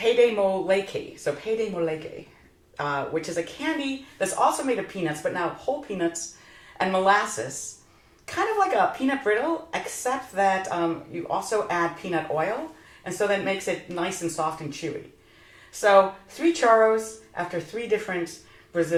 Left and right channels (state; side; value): identical; both; correlation 1.00